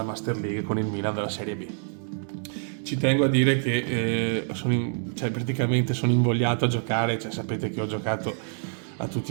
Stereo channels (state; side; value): silent; left; 57 dB below the other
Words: Master League con il Milan della Serie B. Ci tengo a dire che cioè, praticamente sono invogliato a giocare, cioè, sapete che ho giocato a